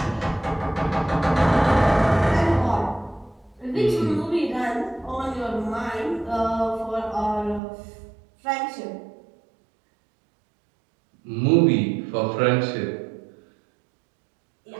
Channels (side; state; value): left; drops out; at 7.6 s